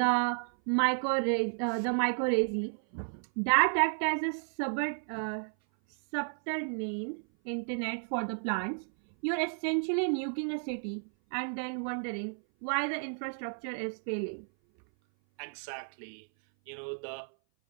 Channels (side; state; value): left; silent; 56 dB below the other